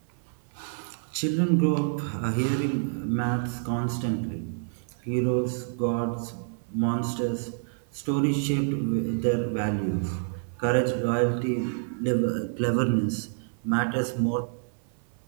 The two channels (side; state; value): left; silent; 55 dB below the other